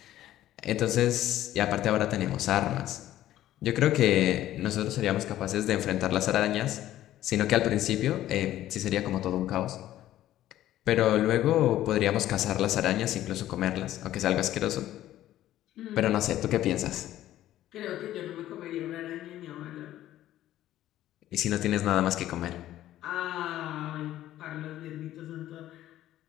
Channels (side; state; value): right; quieter; 13.4 dB